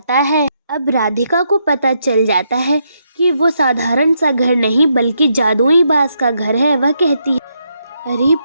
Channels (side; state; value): both; inverted; correlation -0.78